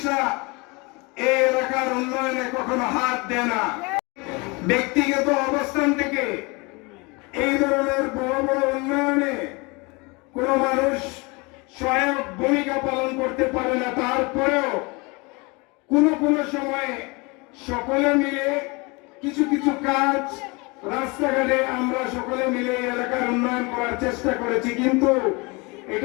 এই এলাকার উন্নয়নে কখনো হাত দেয় না। ব্যক্তিগত অবস্থান থেকে এই ধরনের বড় বড় উন্নয়নে কোন মানুষ সহায়ক ভূমিকা পালন করতে পারে না। তারপরেও কোন সময়ে সকলে মিলে কিছু কিছু কাজ রাস্তাঘাটে আমরা সকলে মিলে এলাকার উন্নয়ন করার চেষ্টা করেছি, কিন্তু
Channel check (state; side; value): quieter; right; 27.4 dB